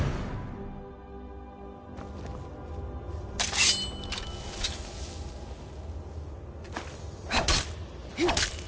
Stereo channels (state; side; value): identical; both; correlation 1.00